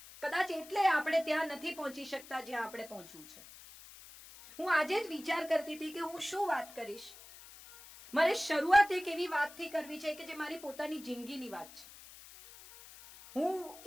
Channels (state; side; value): noise; left; hiss, 18 dB below the sound